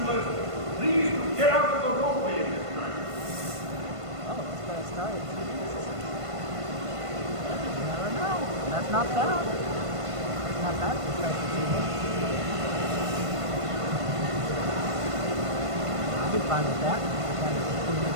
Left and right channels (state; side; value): late; left; 1.5 ms